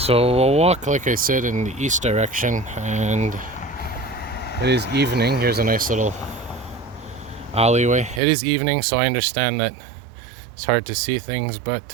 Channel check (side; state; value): left; drops out; at 8.2 s